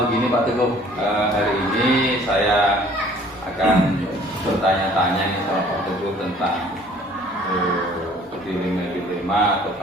Begini Pak Teguh, hari ini saya akan bertanya-tanya nih sama Pak Teguh tentang dilema atau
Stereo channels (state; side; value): normal; both; correlation 0.54